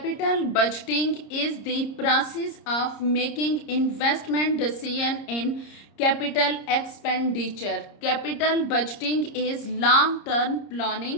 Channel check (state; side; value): late; right; 30 ms